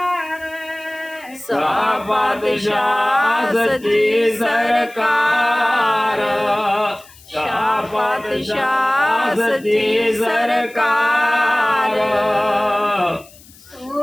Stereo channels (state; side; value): noise; left; hiss, 24 dB below the sound